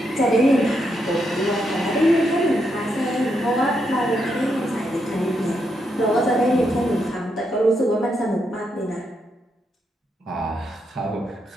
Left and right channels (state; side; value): normal; both; correlation 0.81